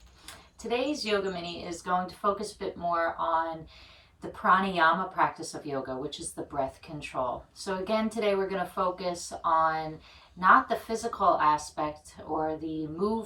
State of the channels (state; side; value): identical; both; correlation 1.00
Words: Today's yoga mini is going to focus a bit more on the pranayama practice of yoga, which is the breath control. So again, today we're going to focus on not the physical aspect or the